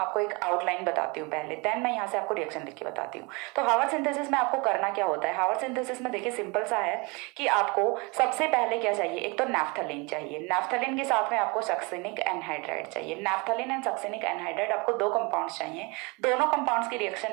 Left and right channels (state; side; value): quieter; left; 28.4 dB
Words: एक आउटलाइन बताती हूँ पहले, देन मैं यहाँ से आपको रिएक्शन लिख के बताती हूँ। तो हार्वर्ड सिंथेसिस में आपको करना क्या होता है? हार्वर्ड सिंथेसिस में देखिए सिंपल सा है कि आपको सबसे पहले क्या चाहिए? एक तो नैफ्थलीन चाहिए, नैफ्थलीन के साथ में आपको सक्सिनिक एनहाइड्राइड चाहिए। नैफ्थलीन एंड सक्सिनिक एनहाइड्राइड आपको 2 कंपाउंड्स चाहिए। दोनों कंपाउंड्स की